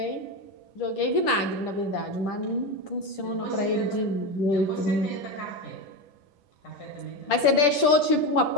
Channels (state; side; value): late; right; 10 ms